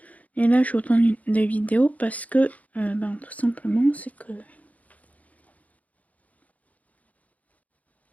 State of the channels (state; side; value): late; right; 0.072 ms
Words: Et là je vous tourne des vidéos parce que tout simplement c'est que